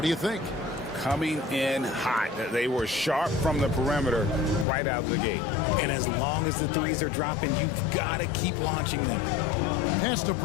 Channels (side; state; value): right; drops out; at 4.7 s